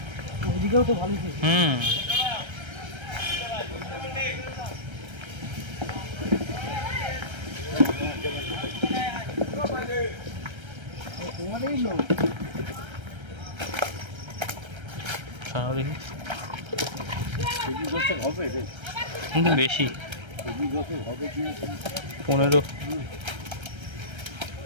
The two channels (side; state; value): left; late; 1.3 ms